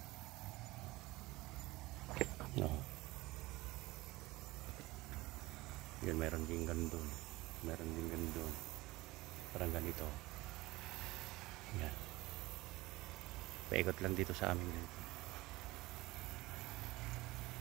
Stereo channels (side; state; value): left; quieter; 20.1 dB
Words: No. Yun, meron din ganun. Meron din ganun. Parang ganito. Yan. Paikot lang dito sa amin.